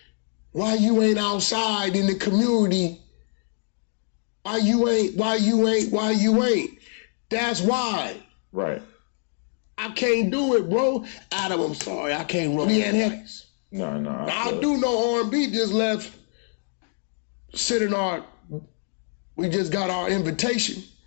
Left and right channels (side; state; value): right; silent; 59 dB below the other